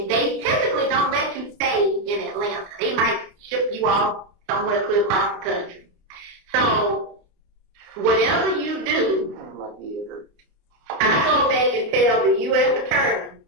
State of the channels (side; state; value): left; late; 29 ms